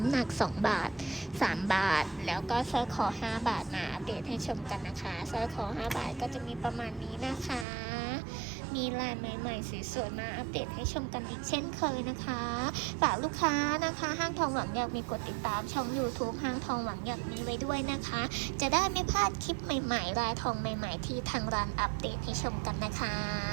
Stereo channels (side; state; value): left; drops out; at 7.7 s